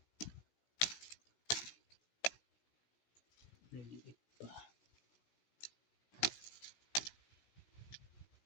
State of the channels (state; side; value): late; right; 16 ms